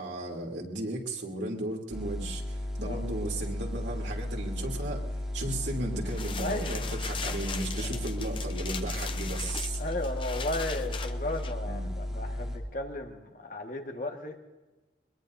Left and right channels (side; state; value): both; normal; correlation 0.59